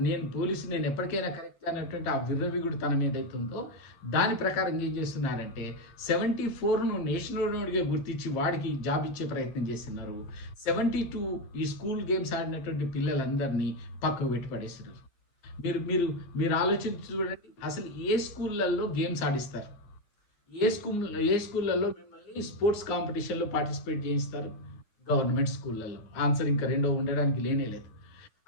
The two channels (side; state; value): right; late; 9.7 ms